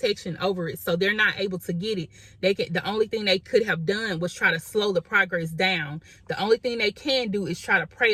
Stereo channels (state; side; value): identical; both; correlation 1.00